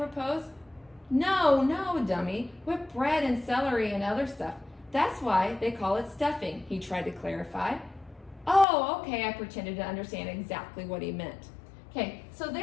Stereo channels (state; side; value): drops out; right; at 8.7 s